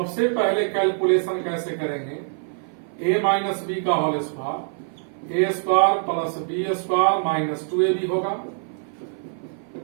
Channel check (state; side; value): silent; left; 56 dB below the other